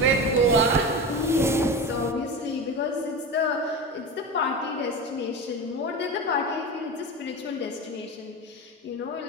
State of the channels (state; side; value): normal; both; correlation 0.26